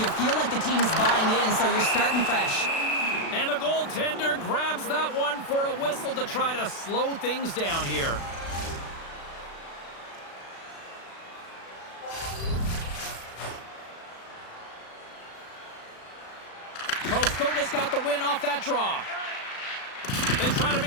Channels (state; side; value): late; right; 36 ms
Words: feel like the team's buying in, so you're starting fresh. And the goaltender grabs that one for a whistle to try to slow things down here. Karlskoga's got the win off that draw. They try to